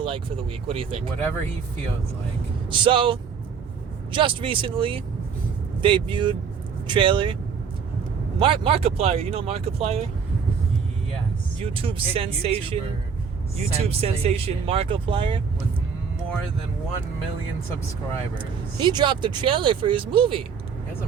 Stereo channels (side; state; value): left; quieter; 6.3 dB